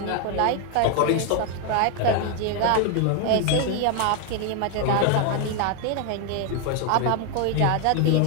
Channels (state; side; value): different; both; correlation 0.01